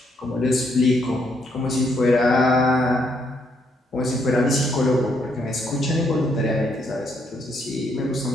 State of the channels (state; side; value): normal; both; correlation 0.73